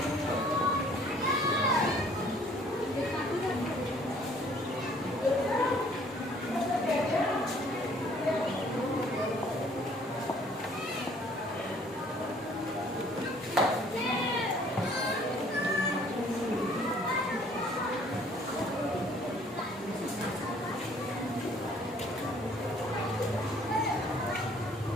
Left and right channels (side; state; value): both; normal; correlation 0.58